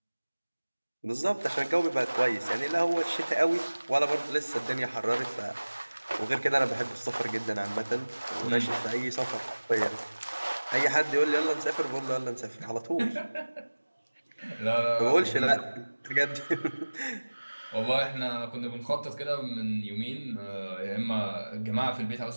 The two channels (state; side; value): inverted; both; correlation -1.00